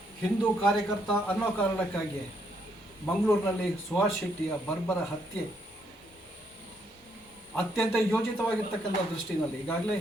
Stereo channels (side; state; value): both; normal; correlation 0.73